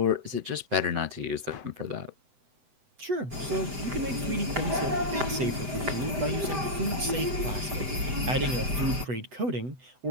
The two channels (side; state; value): left; late; 7.8 ms